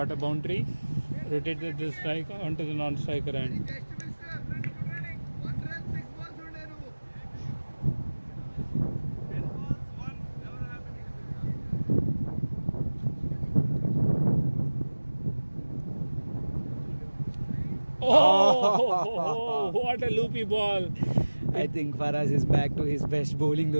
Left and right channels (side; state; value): both; inverted; correlation -1.00